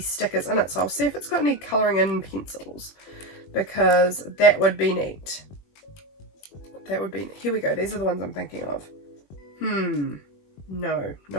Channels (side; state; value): right; late; 21 ms